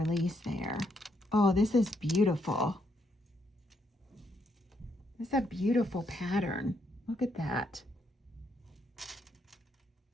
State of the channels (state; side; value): normal; both; correlation 0.76